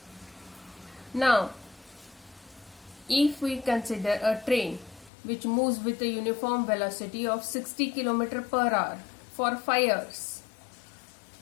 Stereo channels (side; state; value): right; drops out; at 5.1 s